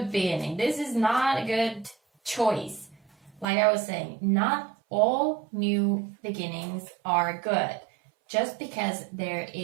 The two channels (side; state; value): left; drops out; at 3.5 s